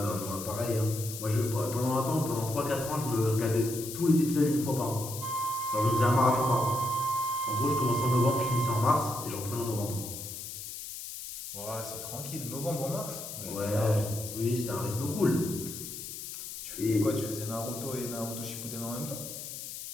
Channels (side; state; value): left; noise; hiss, 9 dB below the sound